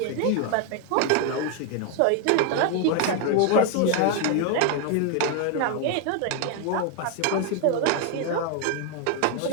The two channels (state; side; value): different; both; correlation 0.01